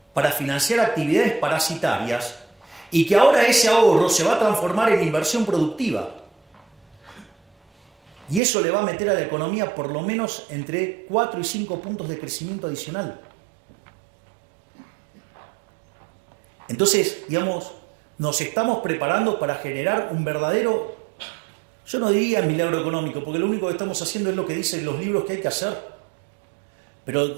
para financiar actividades parasitarias y que ahora ese ahorro se va a transformar en inversión productiva. Y eso le va a meter a la economía por lo menos entre 4 y 5 puntos de crecimiento adicional. Entonces, digamos, nos estamos preparando para generar un verdadero, yo no diría milagro económico, porque lo único que estamos haciendo es lo que dicen los libros que hay que hacer. Pero,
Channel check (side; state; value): left; drops out; at 8.4 s